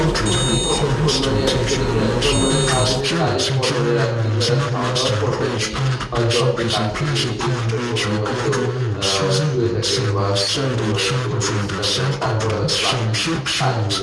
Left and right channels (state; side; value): identical; both; correlation 1.00